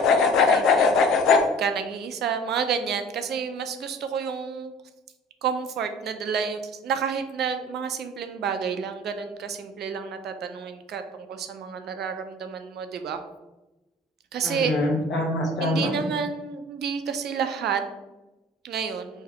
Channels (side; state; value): both; normal; correlation 0.44